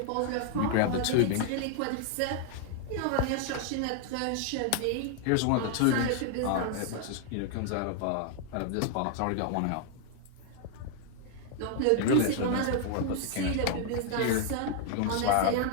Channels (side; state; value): both; different; correlation 0.00